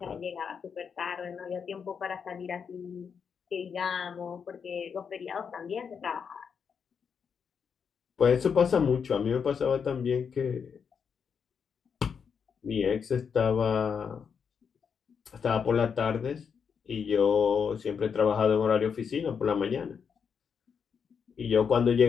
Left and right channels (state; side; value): quieter; right; 6.6 dB